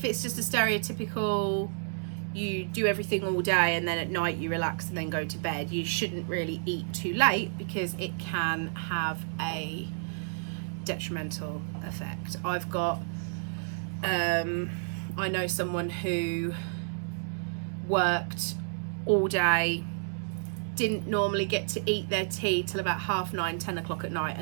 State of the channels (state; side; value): silent; left; digital silence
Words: it's just a stereotypical, you do everything all day and then at night you relax and then go to bed, you shouldn't really eat too late, because it can have a detrimental effect. I've got I know someone who worked all day, didn't normally get to eat their tea till about 9:30, 10 o'clock at night,